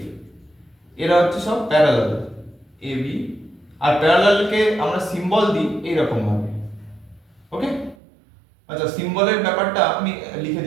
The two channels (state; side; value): drops out; left; at 8.0 s